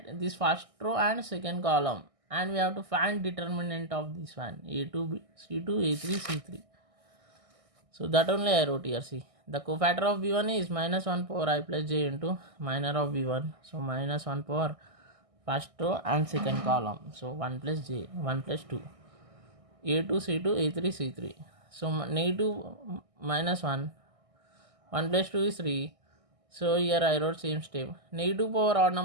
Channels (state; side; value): late; left; 1.6 ms